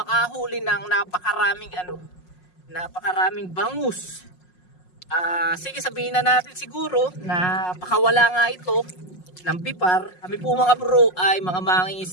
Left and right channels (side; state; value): right; late; 5.5 ms